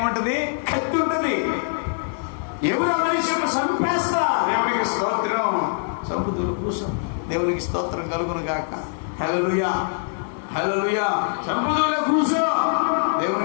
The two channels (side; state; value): right; silent; digital silence